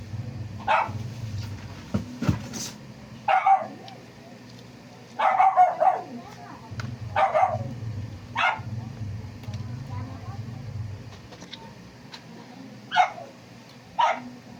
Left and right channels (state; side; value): identical; both; correlation 1.00